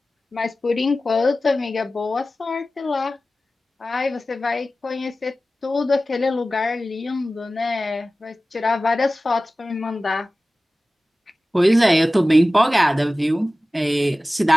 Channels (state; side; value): normal; both; correlation 0.96